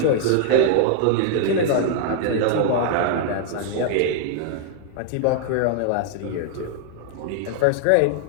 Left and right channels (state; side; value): different; both; correlation -0.01